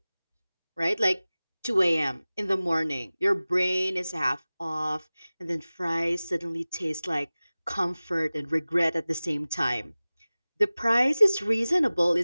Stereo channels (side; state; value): both; inverted; correlation -0.98